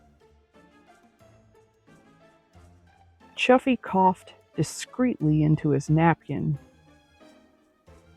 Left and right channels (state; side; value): identical; both; correlation 1.00